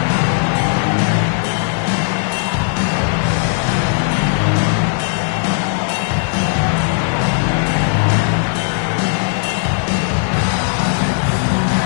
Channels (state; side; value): silent; right; digital silence